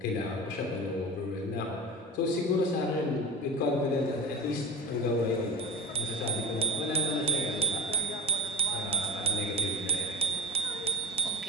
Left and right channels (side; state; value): both; normal; correlation 0.24